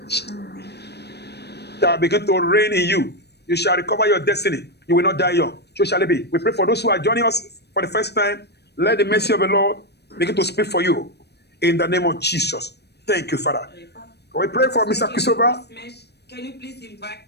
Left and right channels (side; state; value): right; late; 0.48 ms